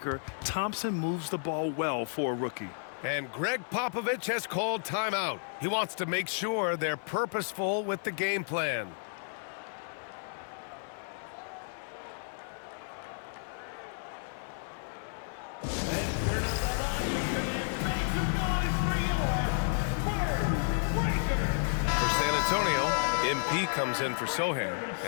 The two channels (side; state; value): right; silent; 56 dB below the other